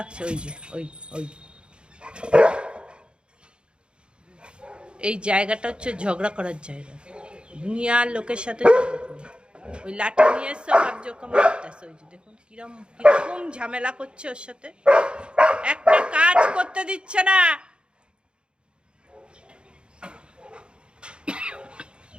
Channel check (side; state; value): left; late; 0.054 ms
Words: ওই যে ওই ওই এই জায়গাটা হচ্ছে ঝগড়া করার জায়গা, দুনিয়ার লোকের সাথে ওই লাঠি নিয়ে এসছে, ভাবছে ওকে মারতেছে। ওই যে দেখুন কিরকম ঝামেলা করছে ওর সাথে, একটা কাজ করতে দিচ্ছে না।